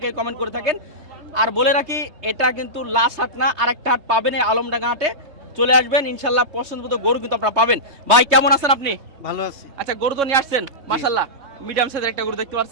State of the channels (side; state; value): left; late; 3.2 ms